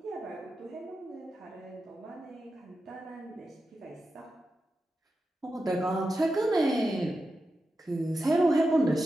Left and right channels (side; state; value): both; normal; correlation 0.90